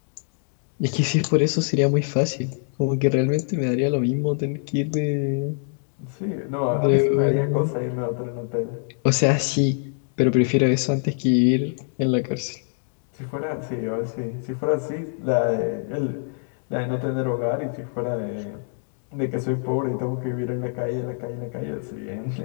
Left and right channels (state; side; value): silent; right; 62 dB below the other